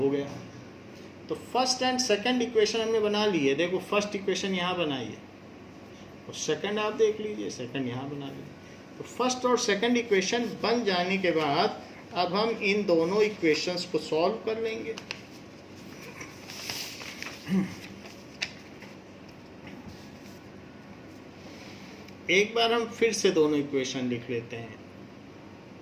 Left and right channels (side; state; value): both; identical; correlation 1.00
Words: गया। तो फर्स्ट एंड सेकंड इक्वेशन हमने बना ली है। देखो फर्स्ट इक्वेशन यहाँ बनाई है और सेकंड आप देख लीजिए, सेकंड यहाँ बना लीजिए। तो फर्स्ट और सेकंड इक्वेशन बन जाने के बाद अब हम इन दोनों इक्वेशंस को सॉल्व कर लेंगे। एक बार हम फिर से दोनों इक्वेशन लिख लेते हैं।